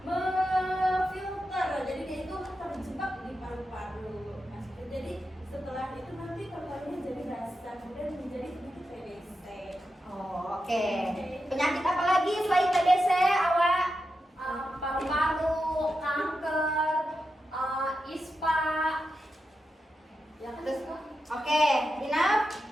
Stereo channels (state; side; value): normal; both; correlation 0.88